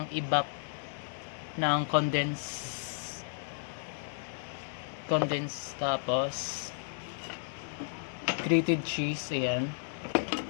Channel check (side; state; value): right; silent; digital silence